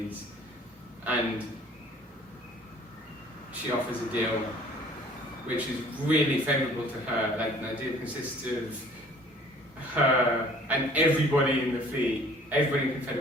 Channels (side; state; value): both; normal; correlation 0.52